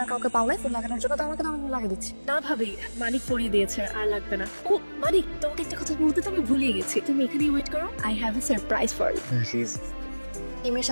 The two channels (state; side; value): inverted; both; correlation -1.00